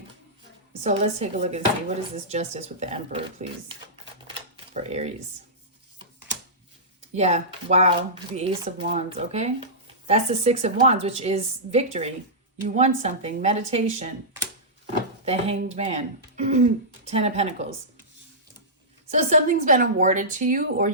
So let's take a look and see. What is this justice with the Emperor, please? For Aries. Yeah, wow. The Ace of Wands, okay? That's the Six of Wands, which is victory. You won something. Meditation. The Hanged Man. 10 of Pentacles. So something's been awarded to you, or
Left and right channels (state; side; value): normal; both; correlation -0.15